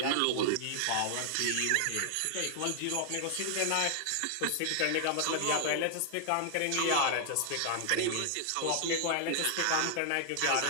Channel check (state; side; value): different; both; correlation -0.01